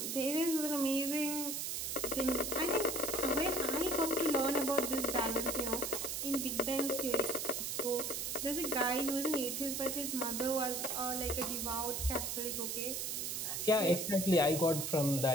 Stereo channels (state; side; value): noise; right; hiss, 2 dB below the sound